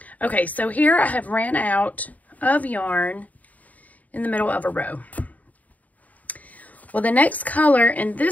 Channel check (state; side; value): late; right; 0.073 ms